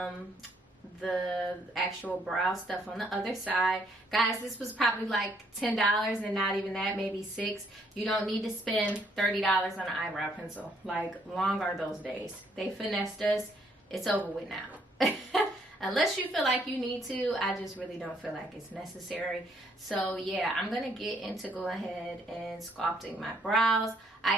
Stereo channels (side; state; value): both; normal; correlation 0.69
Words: the actual brow stuff on the other side. Guys, this was probably like $10 and not even that, maybe $6. You don't need to spend $30 on an eyebrow pencil. Like, long are those days. They finessed us. It's over with now. Unless you feel like you need to, I just really don't feel like it's necessary. So yeah, I'm gonna get into go ahead and sculpting my brows. I